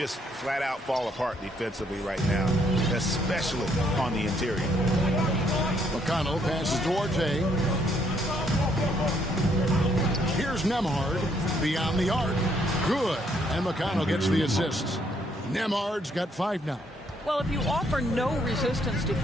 flat out fall apart defensively right now, especially on the interior. McConnell passes Duarte. Here's Nembhard beyond the arc. Good. And McConnell gets the assist. Nembhard's got 5 now. Well, if you offer no resistance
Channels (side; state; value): both; normal; correlation 0.70